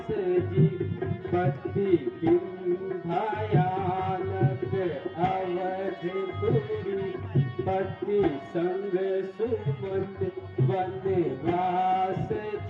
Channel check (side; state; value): both; identical; correlation 1.00